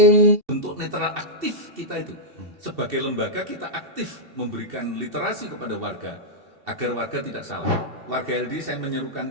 Bentuk netral aktif kita itu. Sebagai lembaga kita aktif memberikan literasi kepada warga agar warga tidak salah. Warga LD saya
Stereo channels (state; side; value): late; left; 2.7 ms